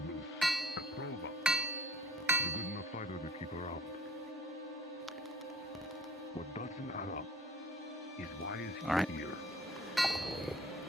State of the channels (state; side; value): normal; both; correlation 0.49